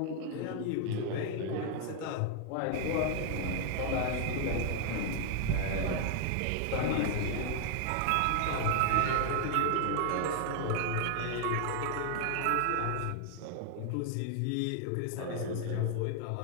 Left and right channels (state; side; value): different; both; correlation 0.00